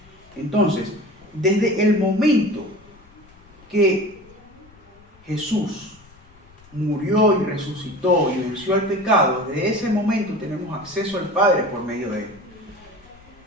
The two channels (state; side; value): noise; left; rumble, 26 dB below the sound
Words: Entonces, desde el momento que Jesús murió y resucitó y venció al pecado, desde ese momento tenemos acceso al Padre por medio de Él.